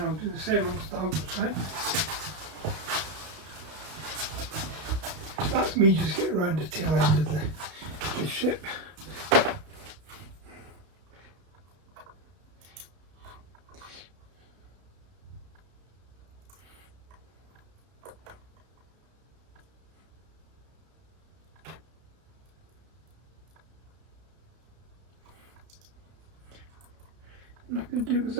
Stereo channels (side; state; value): left; late; 32 ms